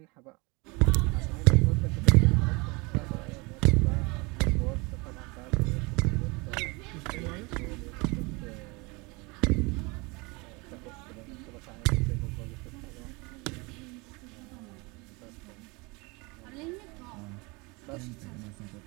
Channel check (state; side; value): quieter; left; 27.0 dB